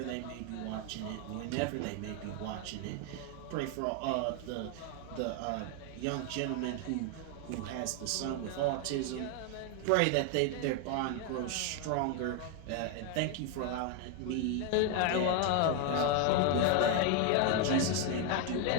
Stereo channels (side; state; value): both; different; correlation 0.01